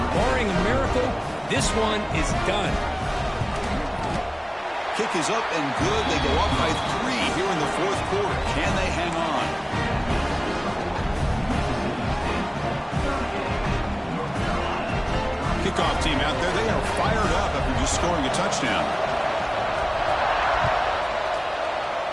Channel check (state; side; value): identical; both; correlation 1.00